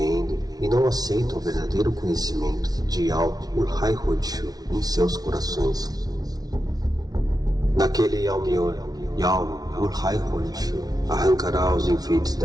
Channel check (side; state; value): left; late; 0.19 ms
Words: e não aceitam o verdadeiro conhecimento de algo por Hai-Ho-Tzu em seus corações. Naquele Yao-Mior, Yao por Hai-Ho-Tzu arrancará os enfeites